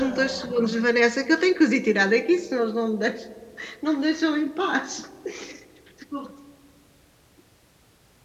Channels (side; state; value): both; identical; correlation 1.00